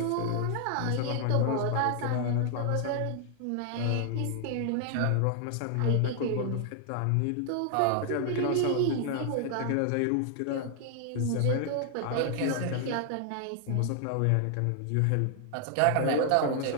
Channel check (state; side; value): different; both; correlation 0.00